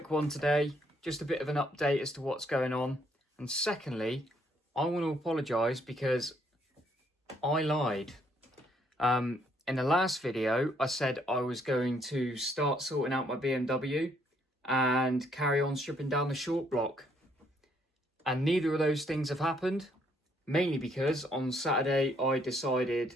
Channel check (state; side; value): normal; both; correlation 0.69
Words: one today, just a bit of an update as to what's going on. And secondly, I want to apologise because I lied. In the last video, I said I was going to start sorting out my BMW and carry on stripping down the short block. And neither of those things have happened, mainly because on Saturday I